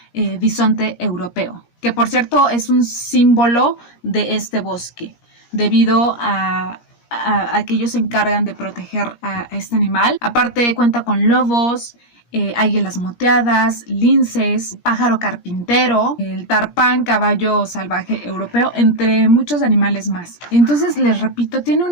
bisonte europeo, que por cierto es un símbolo de este bosque, debido a que ellos se encargan de proteger a este animal. Aparte cuenta con lobos, águilas moteadas, linces, pájaro carpintero, el tarpán, caballo salvaje europeo, entre muchos animales más. Entonces, les repito, tiene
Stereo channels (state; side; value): late; right; 17 ms